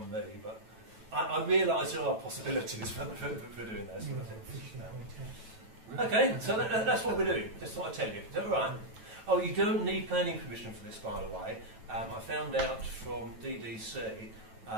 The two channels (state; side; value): late; left; 9.1 ms